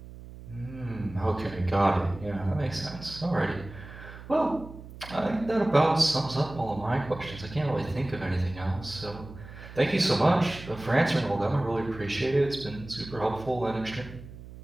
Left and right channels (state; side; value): noise; right; hum, 15 dB below the sound